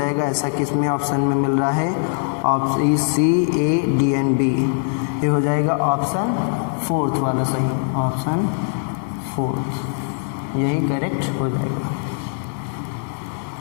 ऐसा किस में ऑप्शन में मिल रहा है, option E, C, A, D and B, ये हो जाएगा ऑप्शन 4 वाला सही, ऑप्शन 4 यही करेक्ट हो जाएगा।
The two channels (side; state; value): right; silent; 65 dB below the other